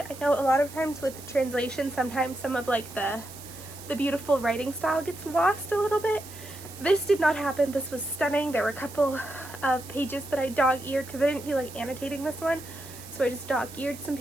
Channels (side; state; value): right; noise; hiss, 16 dB below the sound